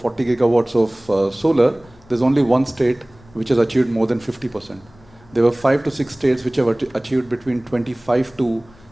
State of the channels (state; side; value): noise; left; rumble, 26 dB below the sound